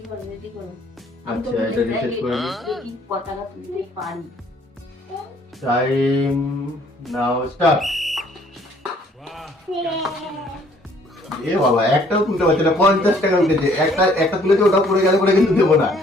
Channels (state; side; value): normal; both; correlation 0.61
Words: রেডি করো। আচ্ছা এটা রিসেট করে নি। দেখি কত টাকা তুলতে পারি। টাইম নাও স্টার্ট। এ বাবা, একটাও তুলতে পারছে না। 50 টাকা উঠেছে। একটা তুলেছে, ওটা পড়ে গেলে পরে কিন্তু দেবো না।